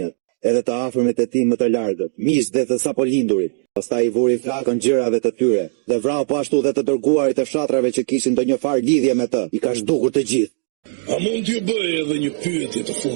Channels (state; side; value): silent; left; digital silence